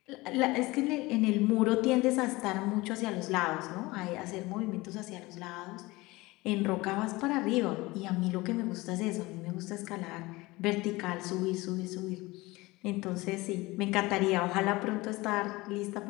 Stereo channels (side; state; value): right; quieter; 21.4 dB